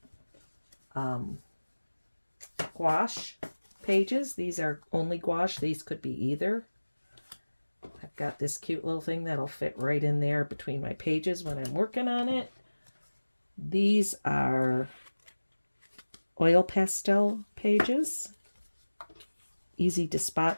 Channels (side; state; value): both; inverted; correlation -1.00